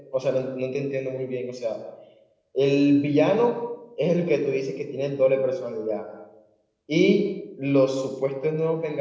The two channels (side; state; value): both; identical; correlation 1.00